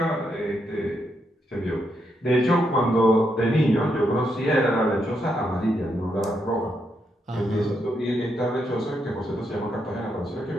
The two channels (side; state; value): both; normal; correlation 0.80